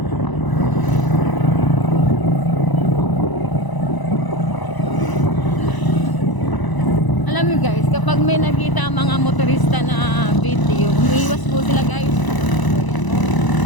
Alam niyo guys, kapag may nakita ang mga motorista na video, umiiwas po sila guys.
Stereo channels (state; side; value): late; right; 1.0 ms